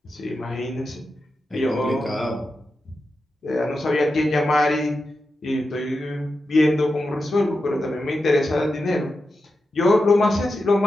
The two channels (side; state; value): both; normal; correlation 0.90